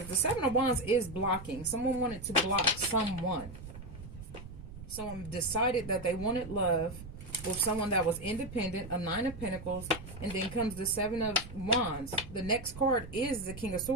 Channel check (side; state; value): right; noise; rumble, 13 dB below the sound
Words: the Seven of Wands is blocking. Someone wanted to block someone. Someone decided that they wanted love with someone that was independent, a Nine of Pentacles, and then comes the Seven of Wands. The next card is the King of